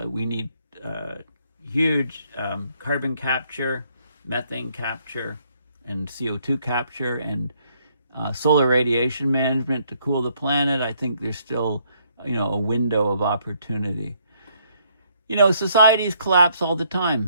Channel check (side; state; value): both; inverted; correlation -0.70